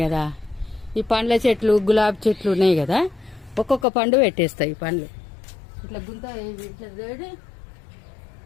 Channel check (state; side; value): drops out; right; at 3.9 s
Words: కదా, ఈ పండ్ల చెట్లు గులాబీ చెట్లు ఉన్నాయి కదా, ఒక్కొక్క పండు పెట్టేస్తాయి. ఈ పండ్లు ఇట్లా గుంత ఇట్లా వేడి